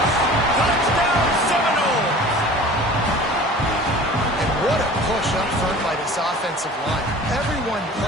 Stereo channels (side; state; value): both; normal; correlation 0.43